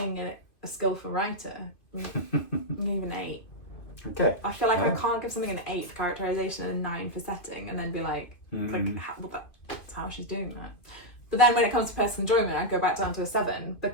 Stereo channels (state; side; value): late; right; 2.5 ms